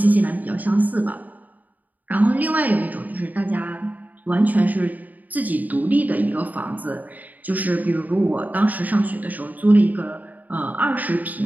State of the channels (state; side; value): late; left; 0.080 ms